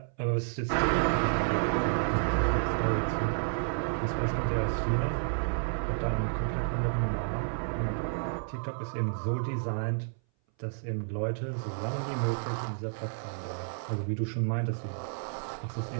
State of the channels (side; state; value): left; silent; 57 dB below the other